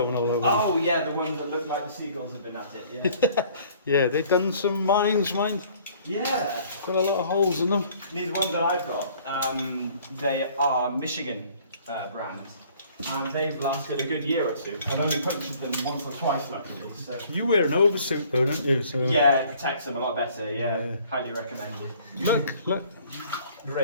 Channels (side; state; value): both; inverted; correlation -0.56